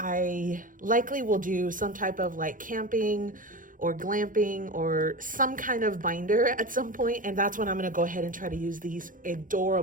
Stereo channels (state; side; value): late; left; 0.39 ms